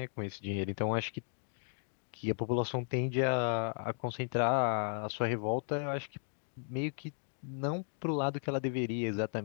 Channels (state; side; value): silent; right; digital silence